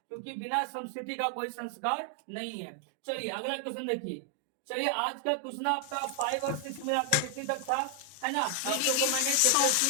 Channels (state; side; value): different; both; correlation 0.00